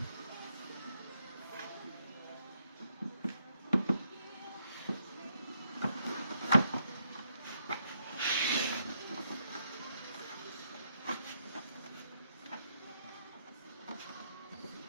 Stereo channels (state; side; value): inverted; both; correlation -0.77